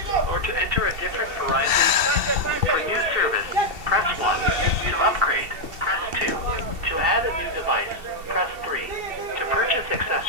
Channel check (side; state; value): left; late; 2.7 ms